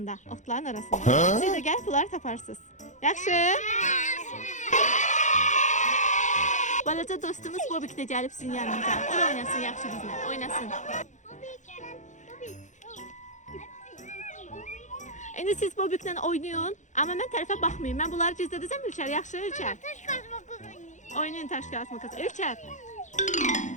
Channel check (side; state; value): right; late; 0.35 ms